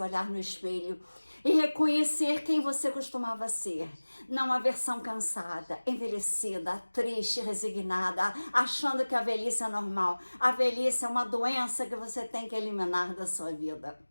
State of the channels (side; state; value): both; inverted; correlation -1.00